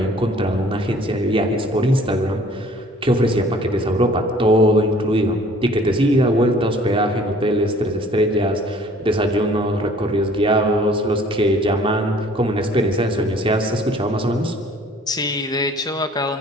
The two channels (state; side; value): normal; both; correlation 0.54